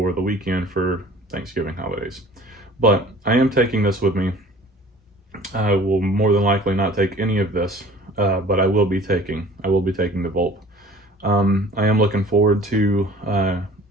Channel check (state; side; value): normal; both; correlation 0.47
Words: the weekend for Thanksgiving holidays. But I am taking this with me. I will more than likely not take any of this, but I will be taking the Volt. I am looking forward to